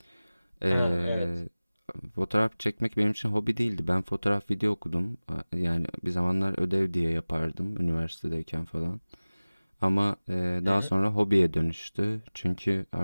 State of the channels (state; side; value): inverted; both; correlation -0.99